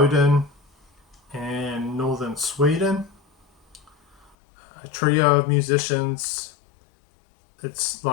and northern Sweden. A trio of musicians. It's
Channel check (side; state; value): right; drops out; at 4.3 s